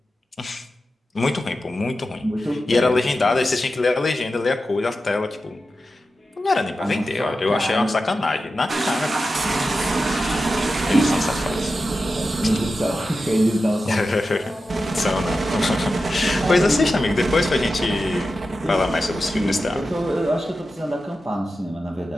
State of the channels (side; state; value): both; normal; correlation 0.92